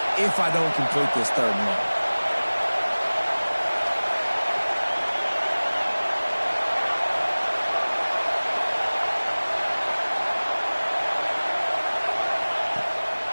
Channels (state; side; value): inverted; both; correlation -1.00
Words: if I don't complete this third and long.